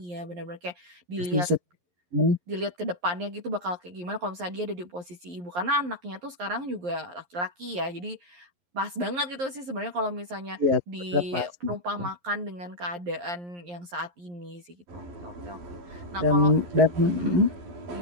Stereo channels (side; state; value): left; late; 11 ms